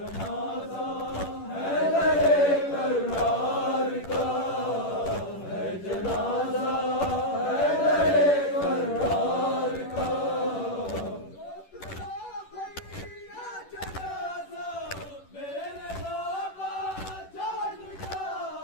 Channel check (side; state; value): right; late; 10 ms